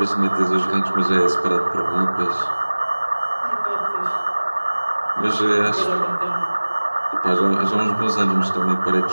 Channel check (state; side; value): inverted; both; correlation -1.00